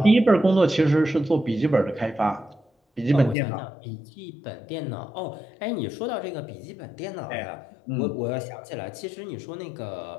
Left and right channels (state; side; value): drops out; right; at 3.4 s